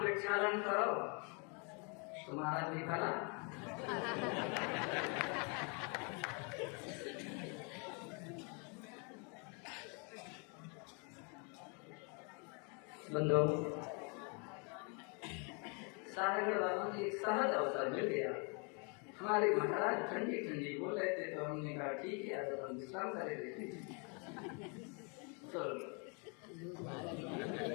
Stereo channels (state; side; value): quieter; right; 35.0 dB